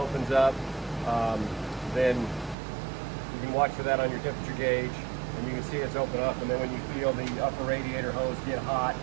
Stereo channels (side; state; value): left; drops out; at 2.6 s